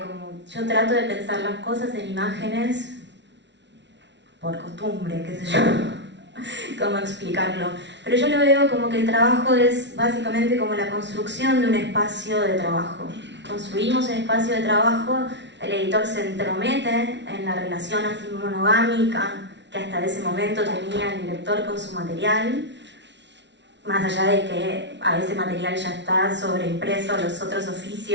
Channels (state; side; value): late; left; 0.51 ms